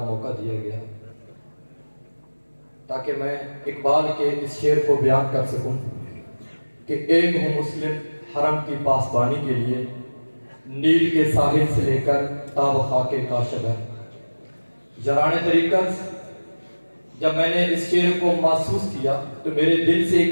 موقع دیا گیا تاکہ میں اقبال کے اس شعر کو بیان کر سکوں کہ ایک ہوں مسلم حرم کی پاسبانی کے لیے، نیل کے ساحل سے لے کر تاب خاک کاشغر. جران طریقت جب میں نے اس شعر کو محسوس کیا تو میرے دل سے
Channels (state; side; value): inverted; both; correlation -1.00